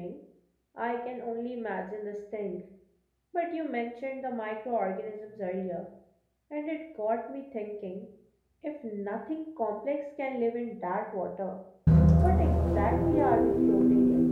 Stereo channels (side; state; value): both; identical; correlation 1.00